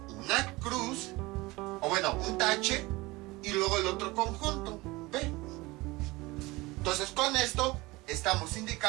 una cruz, un tache y luego el otro conjunto, B. Entonces con esto estamos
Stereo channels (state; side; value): quieter; left; 21.8 dB